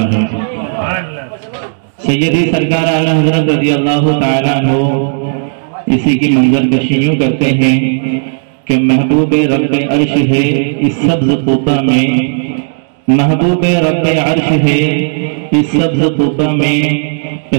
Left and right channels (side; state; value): left; silent; digital silence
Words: ہے. سیدی سرکار اعلیٰ حضرت رضی اللہ تعالیٰ عنہ اسی کی منظر کشی یوں کرتے ہیں کہ محبوب رب عرش ہے اس سبز قبہ میں، محبوب رب عرش ہے اس سبز قبہ میں،